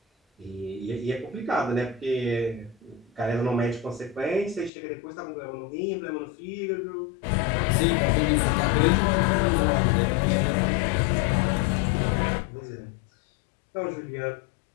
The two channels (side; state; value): right; drops out; at 4.7 s